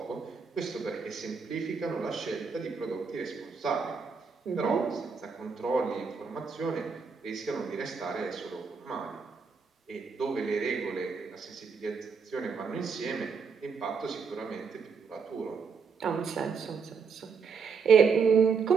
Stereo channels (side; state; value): left; quieter; 5.5 dB